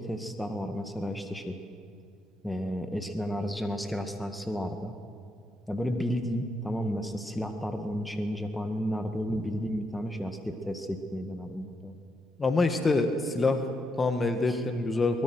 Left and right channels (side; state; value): both; normal; correlation 0.81